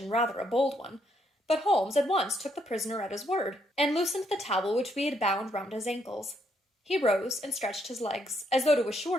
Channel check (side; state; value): both; normal; correlation 0.74